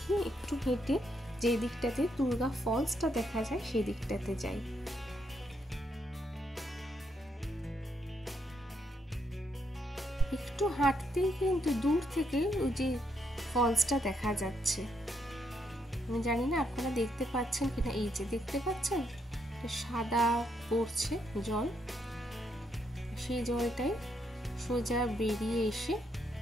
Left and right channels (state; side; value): normal; both; correlation 0.77